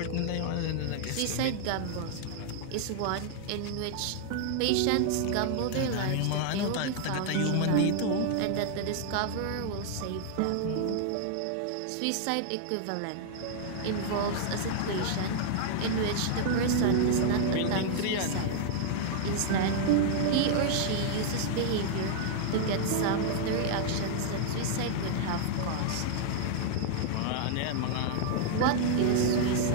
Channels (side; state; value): both; different; correlation -0.01